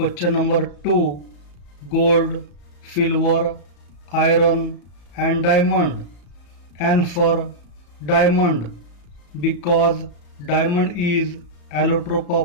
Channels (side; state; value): right; late; 34 ms